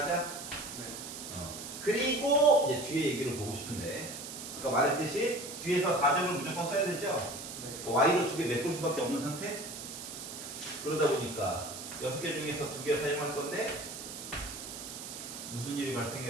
네. 그리고 이제 뒤에 얘기를 보고 싶은데 아까 말했듯이 뒤에서 4점을 무조건 써야 되죠? 네. Y로 2개 메꿀 수밖에 없는 상태? 그러다 보니까 6개 중에서 2개 사용할 건데 무슨 일이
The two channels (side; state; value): right; noise; hiss, 9 dB below the sound